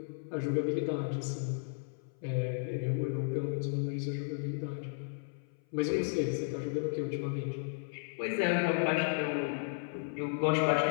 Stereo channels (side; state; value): right; silent; 55 dB below the other